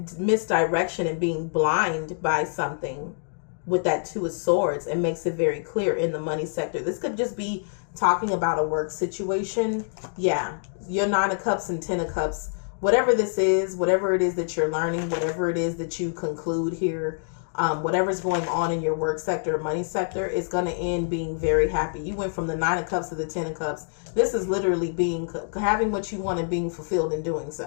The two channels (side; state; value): right; silent; digital silence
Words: and being blind by something with that 2 of Swords, and makes it very clear in the money sector. This could just be talking about a work situation. Yeah, your 9 of Cups and 10 of Cups, whatever this is, whatever it is that you're learning, whatever it is that you conclude here, whatever's going on in your work sector or money sector, is going to end being very happy. You went from the 9 of Cups to the 10 of Cups. This is literally having what you want and being fulfilled in doing